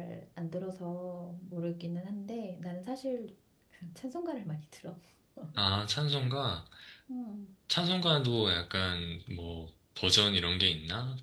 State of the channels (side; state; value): both; identical; correlation 1.00